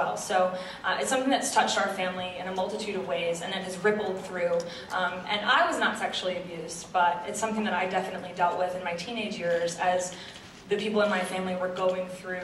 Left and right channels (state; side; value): identical; both; correlation 1.00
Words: So it's something that's touched our family in a multitude of ways, and it has rippled through. And I was not sexually abused, but it's something that I definitely dealt with in my teenage years as the people in my family were going